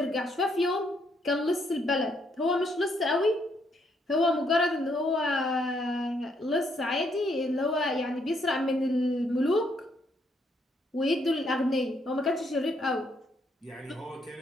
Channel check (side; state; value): both; normal; correlation 0.72